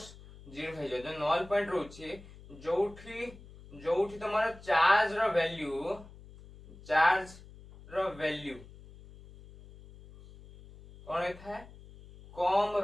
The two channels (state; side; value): noise; left; hum, 19 dB below the sound